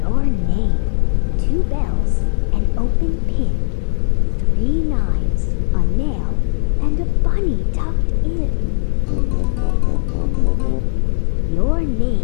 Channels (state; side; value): silent; right; digital silence